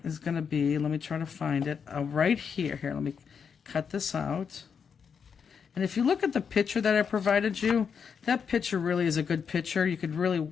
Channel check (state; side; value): quieter; right; 6.6 dB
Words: going to be, let me try to find it, right here. Here, let me cut this out. And if you look at the picture that I provided you, that picture really is a good picture. You could